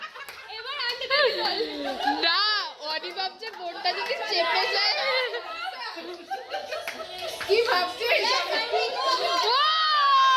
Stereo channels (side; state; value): both; identical; correlation 1.00